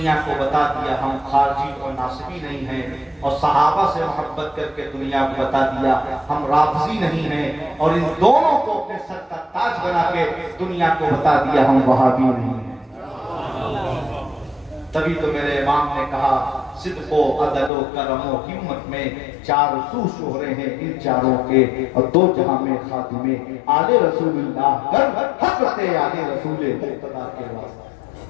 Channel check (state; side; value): drops out; right; at 17.7 s